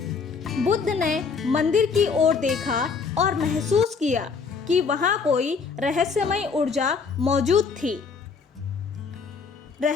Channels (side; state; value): right; quieter; 5.2 dB